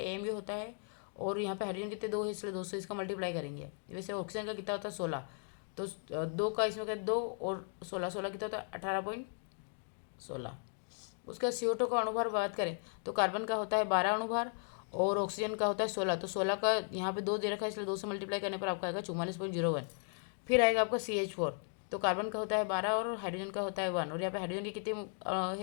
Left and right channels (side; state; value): right; silent; 54 dB below the other